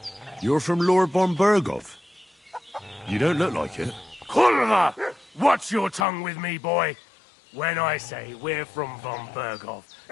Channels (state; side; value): drops out; right; at 6.1 s